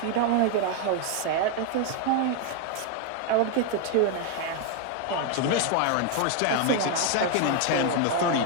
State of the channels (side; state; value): both; different; correlation 0.01